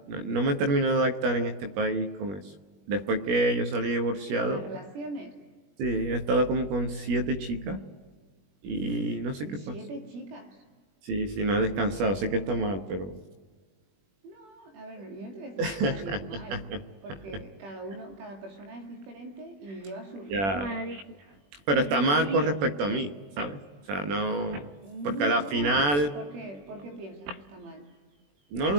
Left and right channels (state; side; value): late; left; 21 ms